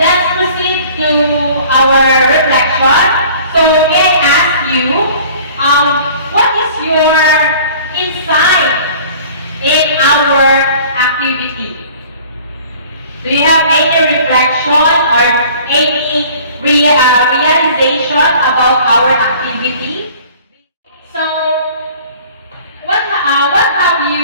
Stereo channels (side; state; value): both; inverted; correlation -0.49